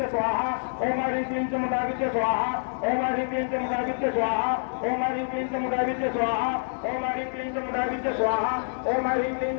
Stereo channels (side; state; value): right; silent; digital silence